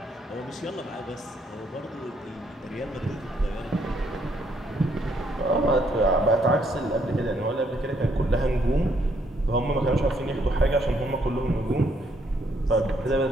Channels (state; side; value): normal; both; correlation 0.71